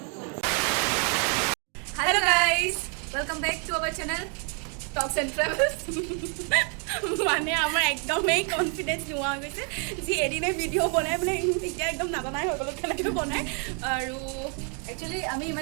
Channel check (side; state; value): left; quieter; 38.3 dB